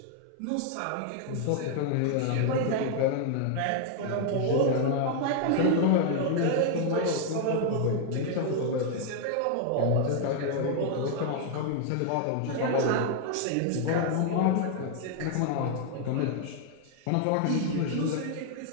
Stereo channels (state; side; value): different; both; correlation 0.00